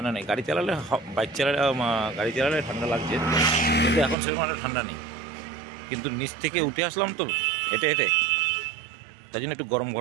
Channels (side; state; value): left; drops out; at 4.2 s